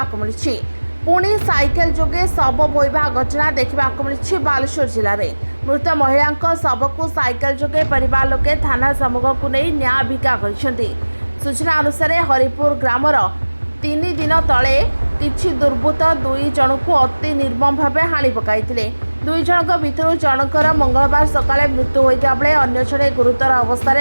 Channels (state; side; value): inverted; both; correlation -1.00